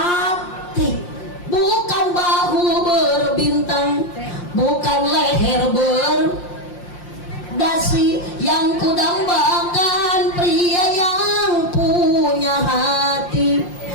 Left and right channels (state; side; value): late; right; 5.7 ms